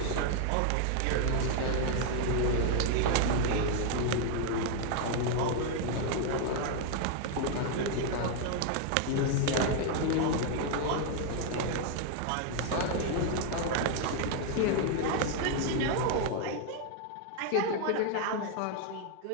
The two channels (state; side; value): different; both; correlation 0.00